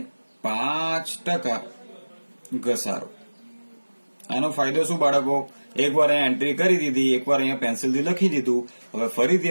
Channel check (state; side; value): inverted; both; correlation -1.00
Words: 5% ઘસારો. આનો ફાયદો શું બાળકો? એકવાર અહીંયા એન્ટ્રી કરી દીધી, એકવાર અહીંયા પેન્સિલથી લખી દીધું. હવે ફરીથી